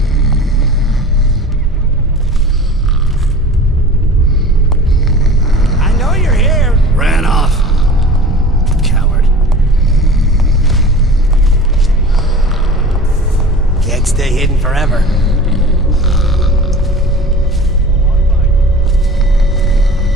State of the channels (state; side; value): normal; both; correlation 0.39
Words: I know you're here. Ran off. Coward. Can't stay hidden forever.